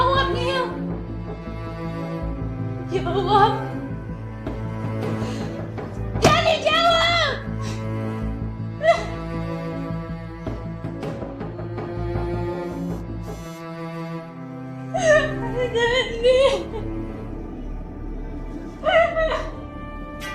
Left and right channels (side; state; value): both; identical; correlation 1.00